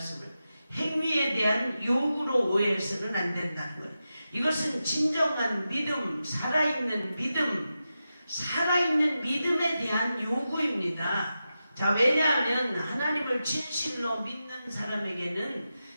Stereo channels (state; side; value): inverted; both; correlation -0.91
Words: 행위에 대한 요구로 오해해서는 안 된다는 거예요. 이것은 진정한 믿음, 살아있는 믿음, 살아있는 믿음에 대한 요구입니다. 자, 왜냐하면 하나님을 진실로 믿는 사람에게는